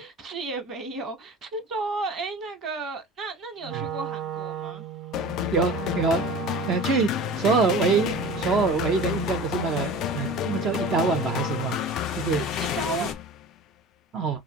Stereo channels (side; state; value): both; normal; correlation 0.38